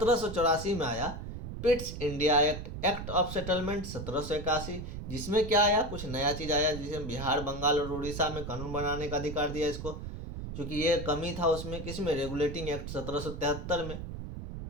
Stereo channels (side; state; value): right; noise; rumble, 8 dB below the sound